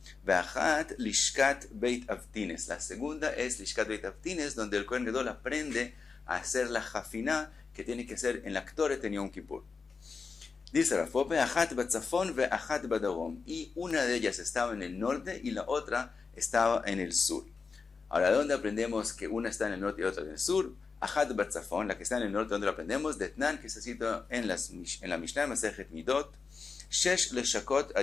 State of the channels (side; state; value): right; quieter; 4.8 dB